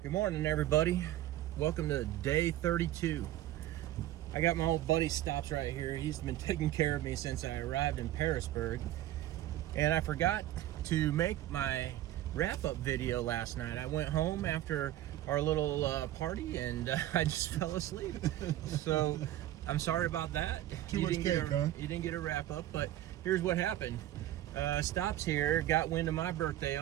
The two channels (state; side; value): quieter; left; 13.9 dB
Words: Good morning, everybody. Welcome to day 32. I got my old buddy Stops right here. He's been taking care of me since I arrived in Parisburg. And I forgot to make my wrap-up video last night. I went home after our little party and I just fell asleep. So I'm sorry about that. You didn't get a wrap-up, but here's what happened. Stops here got wind of my birthday